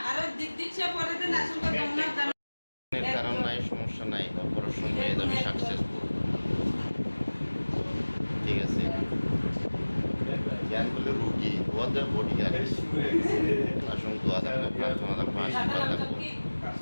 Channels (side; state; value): both; inverted; correlation -1.00